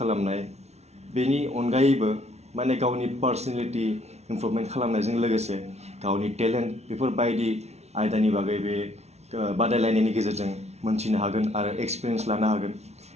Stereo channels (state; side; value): late; left; 0.31 ms